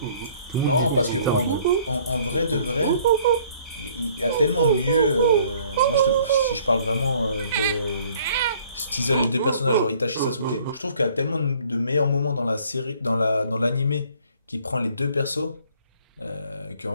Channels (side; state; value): both; inverted; correlation -0.59